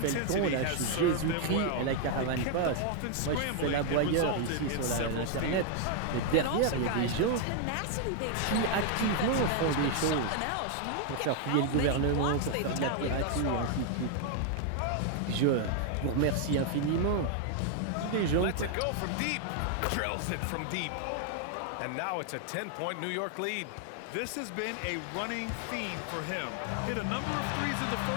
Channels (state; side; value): different; both; correlation 0.00